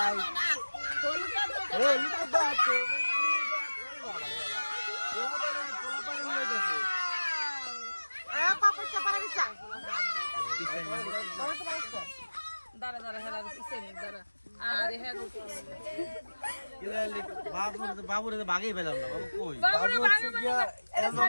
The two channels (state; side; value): inverted; both; correlation -1.00